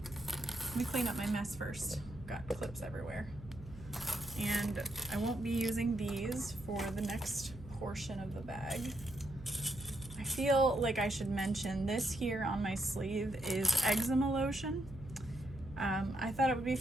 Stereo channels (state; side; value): noise; right; hum, 15 dB below the sound